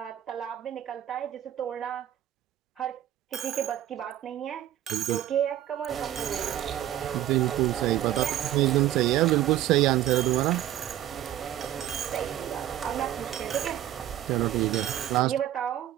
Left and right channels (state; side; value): quieter; left; 12.6 dB